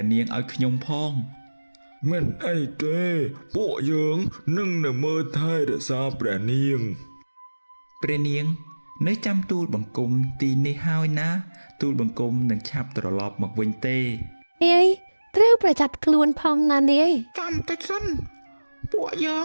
ះនាងឲ្យខ្ញុំផងមិនអីទេពួកយើងនឹងមើលថែរក្សាព្រះនាងនៅចាំទូលបង្គំទីនេះហើយណាទូលបង្គំនឹងឆាប់ត្រឡប់មកវិញទេត្រូវប្រយ័ត្នខ្លួនផងណានាយចាំតិចសិនពួកយើង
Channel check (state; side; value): inverted; both; correlation -1.00